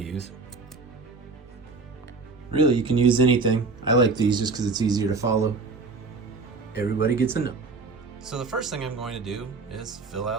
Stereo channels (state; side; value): quieter; left; 4.0 dB